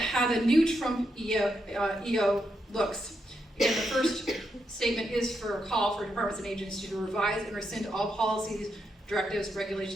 how the new Trump EO looks. Again, the first statement is for a call for departments and agencies to revise and rescind all policies, directives,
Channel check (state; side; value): normal; both; correlation 0.82